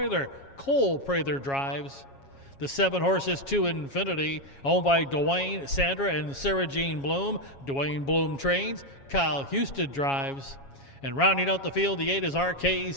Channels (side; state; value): right; late; 7.3 ms